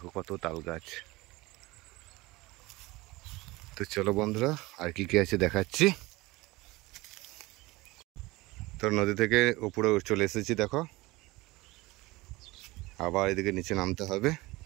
কত তাল গাছ। তো চলো বন্ধুরা, আর কি কি আছে দেখাচ্ছি। তো নদী থেকে উপরে চলে এসেছি। দেখো আবার এদিকে নিচে নামতে হবে।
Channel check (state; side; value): quieter; left; 21.3 dB